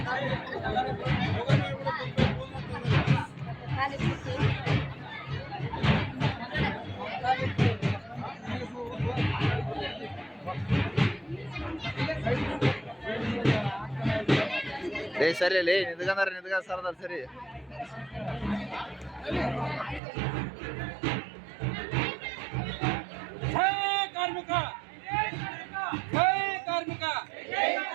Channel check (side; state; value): left; drops out; at 20.0 s